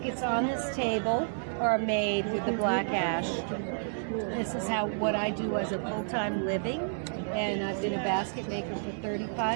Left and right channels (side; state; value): left; silent; 58 dB below the other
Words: on this table are made with the black ash. This is what I do as a full-time living, and I've been a basket maker for